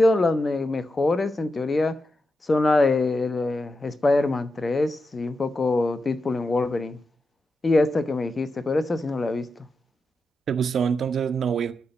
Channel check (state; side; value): normal; both; correlation 0.88